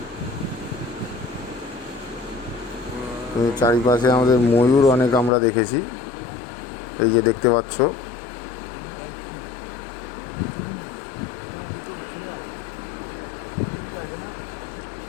চারিপাশে আমাদের ময়ূর অনেক আমরা দেখেছি, এই যে দেখতে পাচ্ছ।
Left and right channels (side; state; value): right; drops out; at 5.3 s